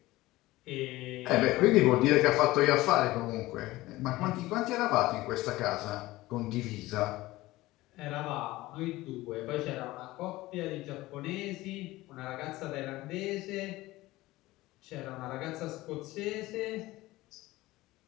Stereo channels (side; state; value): right; quieter; 18.4 dB